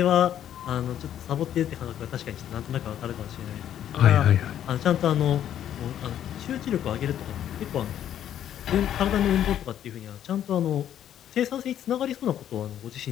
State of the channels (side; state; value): right; quieter; 10.6 dB